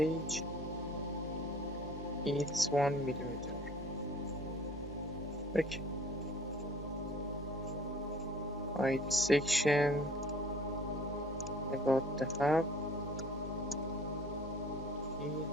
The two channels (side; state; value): both; normal; correlation 0.51